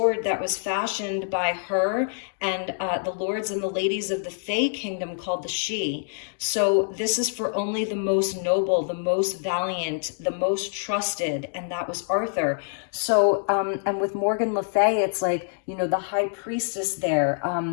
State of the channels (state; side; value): silent; right; digital silence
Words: that was fashioned by her and the lords and the ladies of the Fey kingdom called the Sidhe. So this is for only the most noble, the most valiant, the most trusted, and that was Arthur. So, and with Morgan Le Fay, it's like, the high priestess there,